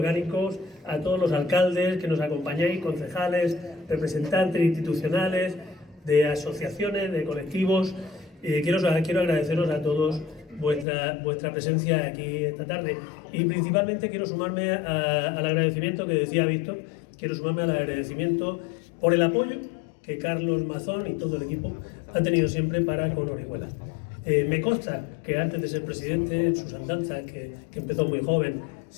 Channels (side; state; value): right; drops out; at 10.9 s